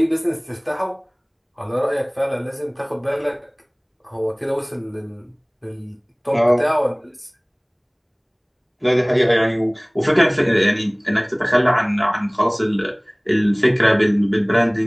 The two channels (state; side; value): identical; both; correlation 1.00